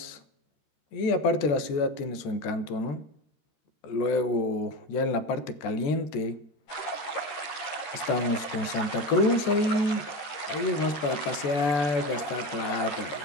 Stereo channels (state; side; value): late; right; 13 ms